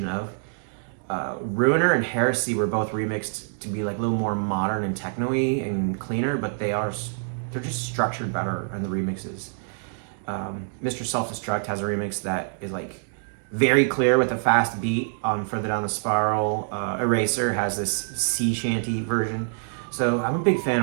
of. Ruiner and Heresy were both remixed to be like a little more modern and techno-y and cleaner, but they're just structured better in the remixes. Mr. Self-Destruct has a remix that is like very clear with a fast beat on Further Down the Spiral. Eraser has this sea shanty version. So I'm a big fan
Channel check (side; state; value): left; silent; digital silence